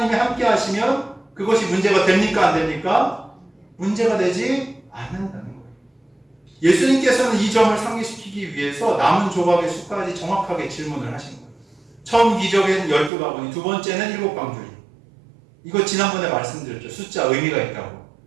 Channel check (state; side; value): drops out; left; at 13.1 s